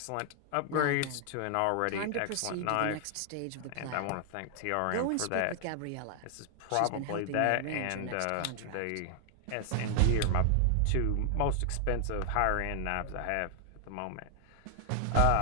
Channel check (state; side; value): different; both; correlation 0.00